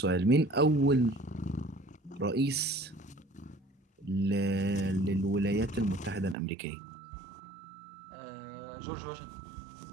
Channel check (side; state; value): left; drops out; at 6.4 s